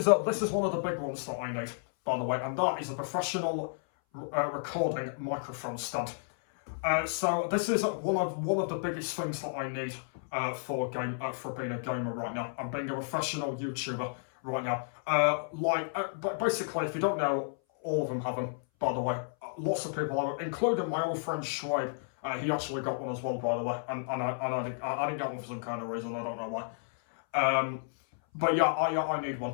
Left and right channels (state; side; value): silent; right; 57 dB below the other